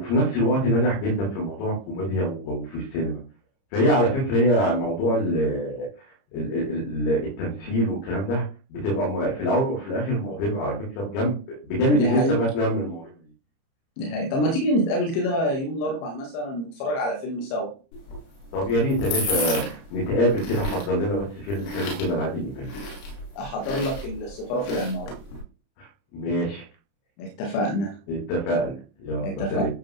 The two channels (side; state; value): right; late; 30 ms